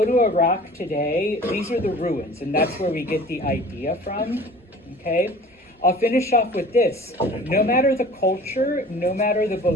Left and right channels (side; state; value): both; normal; correlation 0.45